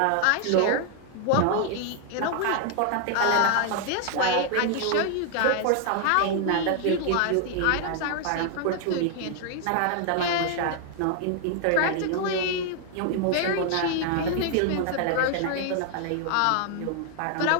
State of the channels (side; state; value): both; different; correlation 0.00